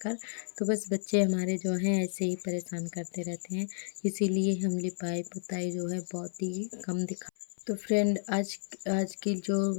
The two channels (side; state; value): right; silent; 56 dB below the other